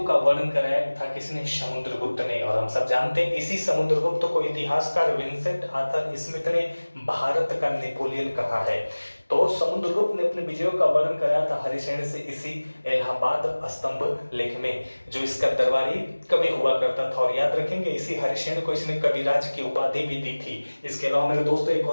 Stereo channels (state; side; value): inverted; both; correlation -1.00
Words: का वर्णन कराया था किसने? समुद्रगुप्त ने। और हम सब जानते हैं इसी समुद्रगुप्त को इतिहासकार विंसेंट आर्थर स्मिथ ने भारत का नेपोलियन कहा है। तो समुद्रगुप्त ने अपने विजयों का वर्णन कराया था हरिसेन से इसी इलाहाबाद स्तंभ लेख में, जो इसका दरबारी कवि हुआ करता था। और याद रखेंगे इसी हरिसेन को इसने कविराज की उपाधि भी दी थी। इसके अलावा मेरे दोस्तों एक